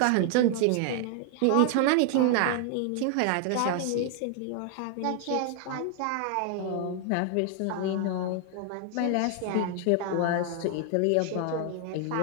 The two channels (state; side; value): different; both; correlation 0.00